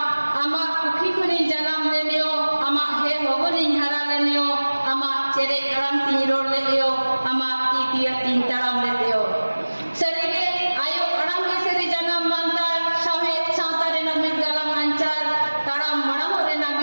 आमा कुखी खुनी जानम लेनियो आमा हे होबनी हारा लेनियो आमा चेरे अराम ती रोड लेयो आमा इतिया तीन ताराम लेयो सरीगे आयो अराम के सरी जानम मानतार साहेब सातारे ना मिट गालाम अंचार ताराम मणम रेना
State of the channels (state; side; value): inverted; both; correlation -1.00